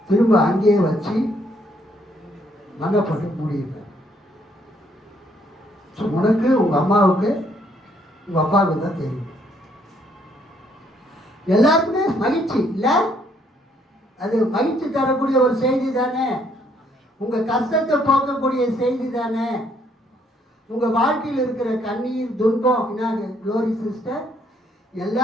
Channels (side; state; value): both; normal; correlation 0.69